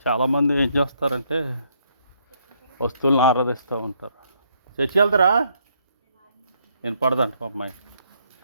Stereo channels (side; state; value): both; inverted; correlation -0.71